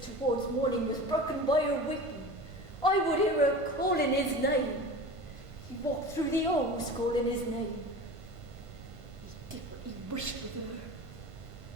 towards morning was broken by her weeping. I would hear her calling his name. He walked through the halls calling his name. He did what he wished with her.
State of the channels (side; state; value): left; late; 1.5 ms